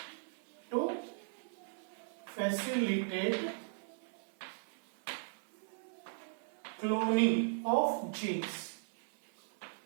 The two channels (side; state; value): left; silent; 53 dB below the other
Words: To facilitate cloning of genes.